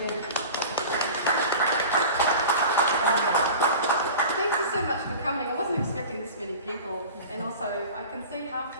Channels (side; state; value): both; inverted; correlation -0.37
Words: Thank you so much for coming. I wasn't expecting this many people, and also I can see half